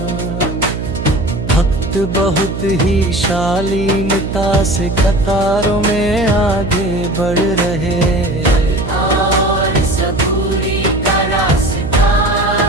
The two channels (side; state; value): right; noise; hum, 6 dB below the sound